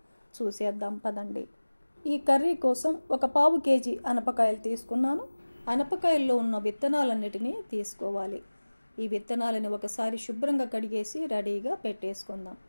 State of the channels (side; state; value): both; inverted; correlation -1.00